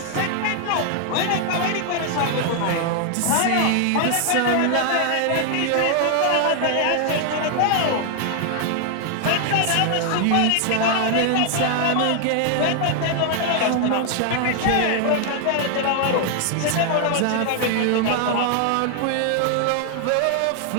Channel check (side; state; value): both; different; correlation 0.00